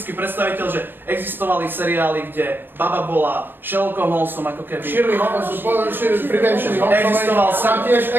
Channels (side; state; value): left; late; 0.096 ms